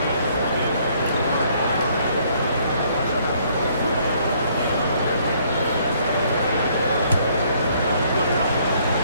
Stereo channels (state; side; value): inverted; both; correlation -0.65